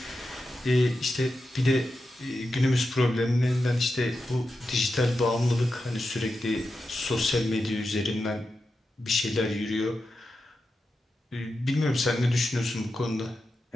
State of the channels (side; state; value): both; normal; correlation 0.89